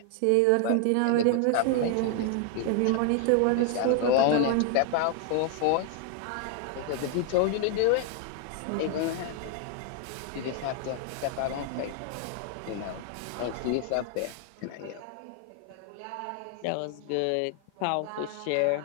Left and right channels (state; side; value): different; both; correlation 0.00